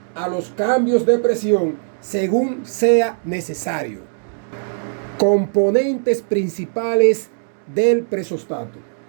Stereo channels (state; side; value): silent; left; 66 dB below the other